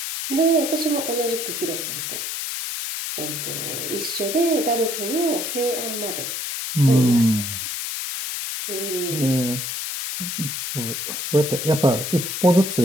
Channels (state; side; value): noise; left; hiss, 4 dB below the sound